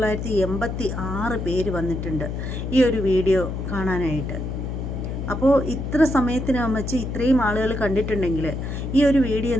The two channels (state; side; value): noise; left; hum, 5 dB below the sound